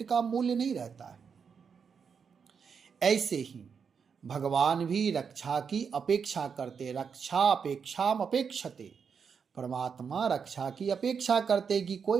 का मूल्य नहीं रहता है। ऐसे ही भगवान भी रक्षा की अपेक्षा करते, रक्षा अपेक्षाम अपेक्षते। परमात्मा रक्षा की अपेक्षा करते कि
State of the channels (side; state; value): left; quieter; 6.3 dB